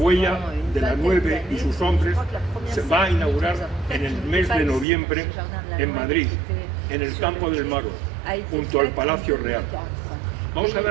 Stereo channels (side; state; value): left; drops out; at 4.9 s